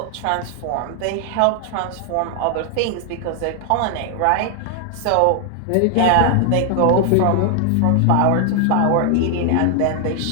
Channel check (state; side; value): different; both; correlation 0.00